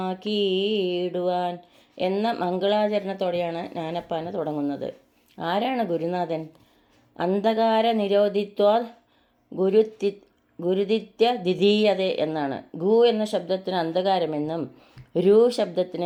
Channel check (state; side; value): identical; both; correlation 1.00